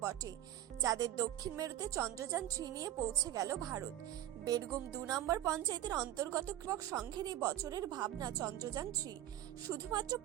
বটে। যাদের দক্ষিণ মেরুতে চন্দ্রযান-3 নিয়ে পৌঁছে গেল ভারত। বেরগুম 2 নম্বর পঞ্চায়েতের অন্তর্গত কৃষক সংঘের এই বছরের ভাবনা চন্দ্রযান-3 শুধুমাত্র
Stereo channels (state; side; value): quieter; left; 13.2 dB